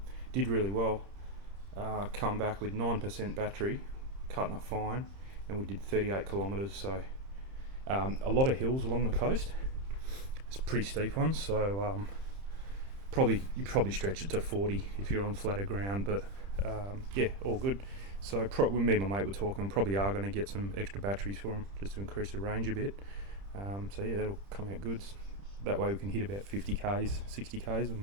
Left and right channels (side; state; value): left; late; 30 ms